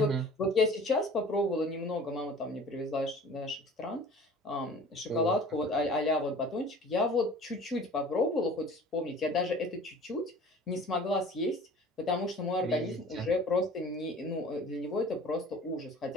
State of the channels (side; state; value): both; normal; correlation 0.45